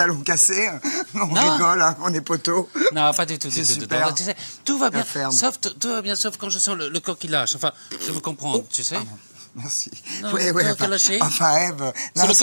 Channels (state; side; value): inverted; both; correlation -1.00